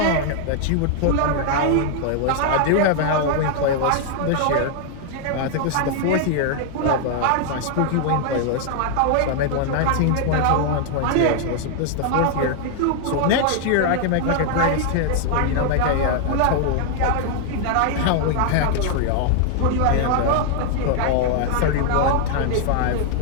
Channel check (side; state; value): both; different; correlation 0.00